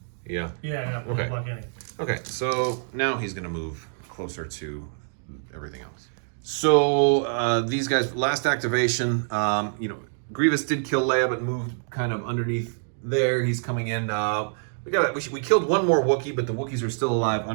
Yeah. Yeah, Okay. Block any. Okay, so now he's going to move closer to everything else. So these guys, last activation, Grievous did kill Leia, but moved kind of underneath there. He's coming in. We killed 1 more Wookiee, but the Wookiees are still alive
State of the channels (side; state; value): left; silent; digital silence